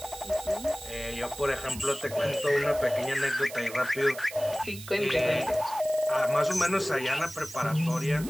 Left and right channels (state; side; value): noise; right; hiss, 14 dB below the sound